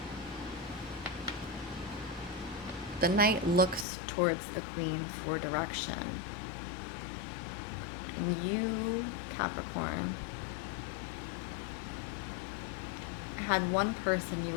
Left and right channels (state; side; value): drops out; right; at 3.9 s